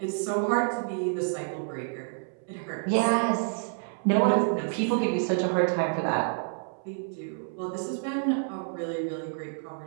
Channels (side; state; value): left; silent; 59 dB below the other